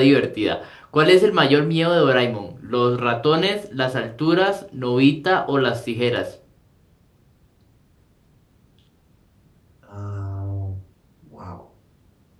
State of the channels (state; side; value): identical; both; correlation 1.00